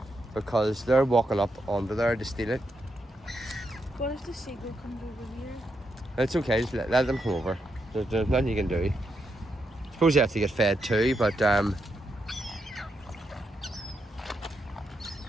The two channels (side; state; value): both; normal; correlation 0.82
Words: because they're walking up onto there to steal it. What if the seagull comes over here? It's okay, just let them come over. There's nothing you can do. I suppose you have to get fed too, but